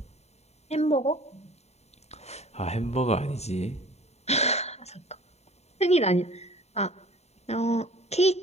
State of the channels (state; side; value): late; right; 0.31 ms